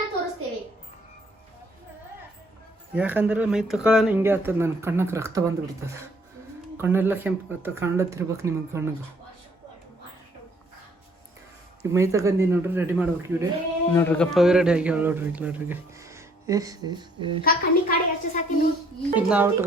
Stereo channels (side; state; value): both; normal; correlation 0.63